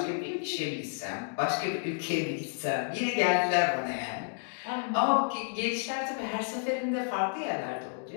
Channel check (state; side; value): silent; right; 57 dB below the other